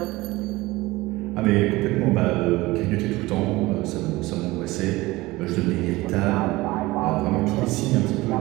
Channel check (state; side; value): quieter; left; 20.0 dB